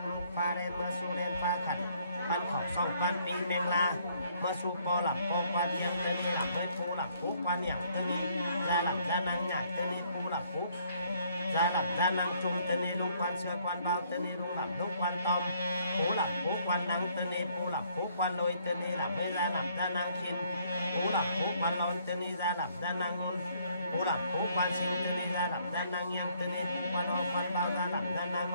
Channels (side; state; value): both; inverted; correlation -0.65